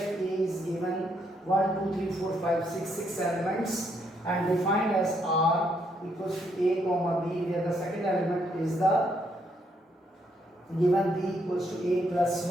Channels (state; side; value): normal; both; correlation 0.74